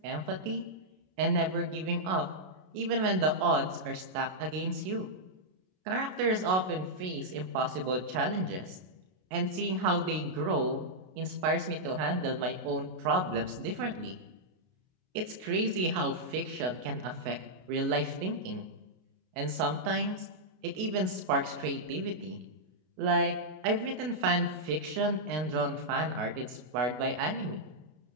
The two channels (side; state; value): left; late; 33 ms